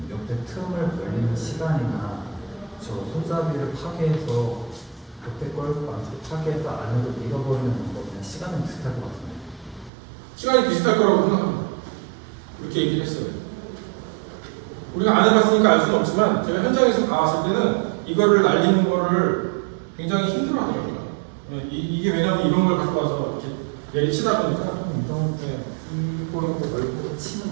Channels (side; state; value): left; drops out; at 9.9 s